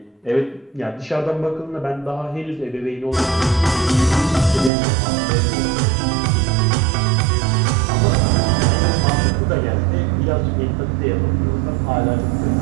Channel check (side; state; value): left; drops out; at 4.7 s